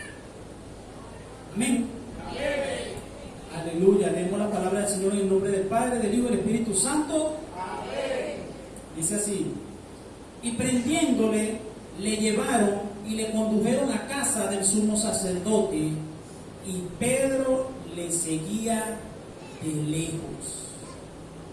Amén. Aleluya. Leemos la palabra del Señor en el nombre del Padre, del Hijo y del Espíritu Santo. Amén. Dice así: y prendiéndole, le llevaron y le condujeron a casa del sumo sacerdote, y Pedro le seguía de lejos.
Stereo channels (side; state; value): both; identical; correlation 1.00